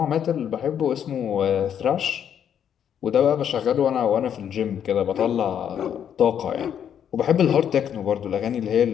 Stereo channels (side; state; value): right; quieter; 8.9 dB